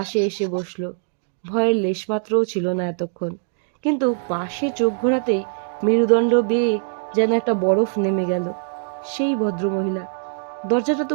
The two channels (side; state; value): left; silent; digital silence